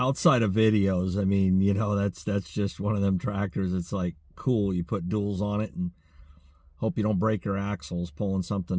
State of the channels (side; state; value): both; identical; correlation 1.00